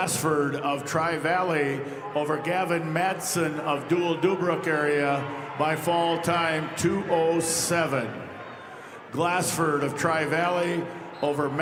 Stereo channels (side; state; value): both; identical; correlation 1.00